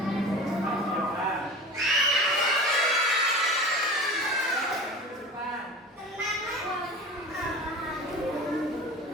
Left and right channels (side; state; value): both; normal; correlation 0.35